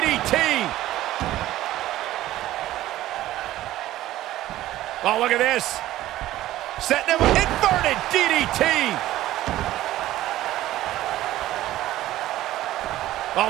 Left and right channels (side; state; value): left; quieter; 14.8 dB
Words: Oh, look at this. Setting him, inverted DDT. Oh,